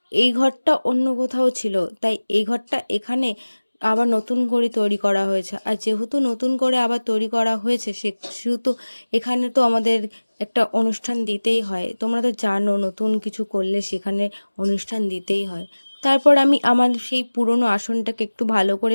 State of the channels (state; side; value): inverted; both; correlation -1.00